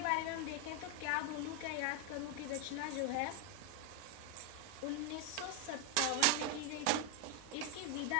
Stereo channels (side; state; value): both; different; correlation 0.00